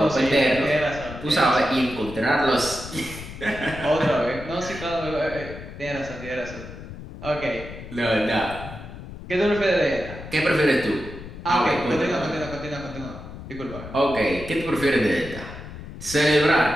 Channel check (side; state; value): left; noise; rumble, 12 dB below the sound